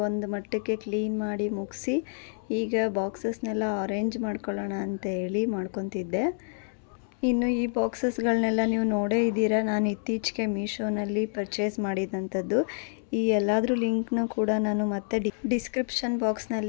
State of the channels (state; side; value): silent; right; 59 dB below the other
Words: ಒಂದು ಮಟ್ಟಕ್ಕೆ ಕ್ಲೀನ್ ಮಾಡಿ ಮುಗಿಸಿ ಈಗ ಬಾಕ್ಸಸ್ನೆಲ್ಲ ಅರೇಂಜ್ ಮಾಡ್ಕೊಳ್ಳೋಣ ಅಂತ ಹೇಳಿ ಮಾಡ್ಕೊತಿದ್ದೆ. ಇನ್ನು ಈ ಬಾಕ್ಸಸ್ಗಳನ್ನೆಲ್ಲ ನೀವು ನೋಡೇ ಇದ್ದೀರಾ. ನಾನು ಇತ್ತೀಚೆಗೆ ಮೀಶೋನಲ್ಲಿ ಪರ್ಚೇಸ್ ಮಾಡಿದಂಥದ್ದು. ಈ ಎಲ್ಲಾದರೂ ಲಿಂಕ್ನು ಕೂಡ ನಾನು ಮತ್ತೆ ಡಿಸ್ಕ್ರಿಪ್ಷನ್